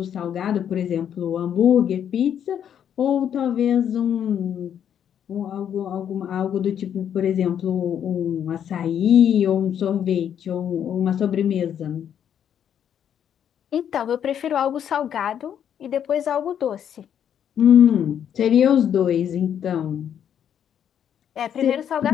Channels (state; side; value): quieter; right; 9.1 dB